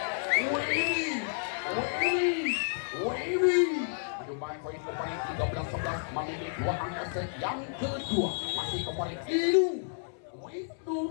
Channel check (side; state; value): right; silent; 57 dB below the other